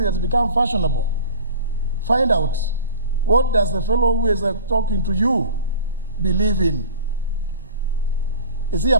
has become fashionable. Find out, what does the fellow who is talking to you believe in? Is he a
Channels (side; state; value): both; inverted; correlation -0.38